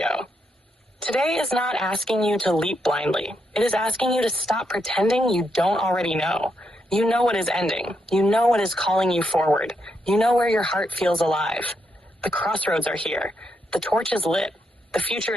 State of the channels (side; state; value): both; normal; correlation 0.80